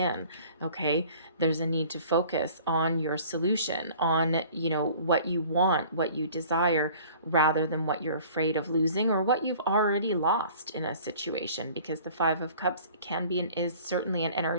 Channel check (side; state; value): both; inverted; correlation -0.49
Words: Okay, there's a need to focus on your solution, on what you want, what you desire, rather than what you're afraid of losing or what you've already lost in a situation, because the Five of Cups can be and is certainly an